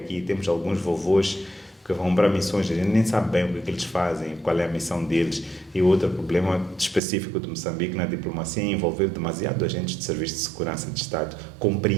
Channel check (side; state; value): left; drops out; at 7.0 s